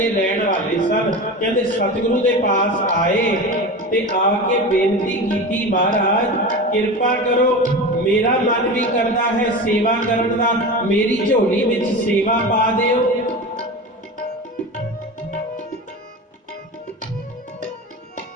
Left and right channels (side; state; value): both; normal; correlation 0.28